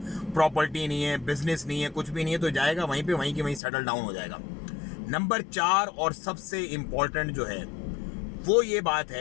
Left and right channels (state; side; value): drops out; right; at 3.6 s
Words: प्रॉपर्टी नहीं है, बिजनेस नहीं है, कुछ भी नहीं है, तो जाएगा वहीं पे, वहीं की वहीं सेटल डाउन हो जाएगा। नंबर 4 और सबसे इम्पॉर्टेंट जो है वो ये बात